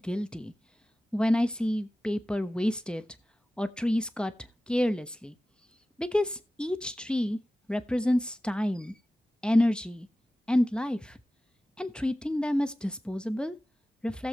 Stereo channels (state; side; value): normal; both; correlation 0.96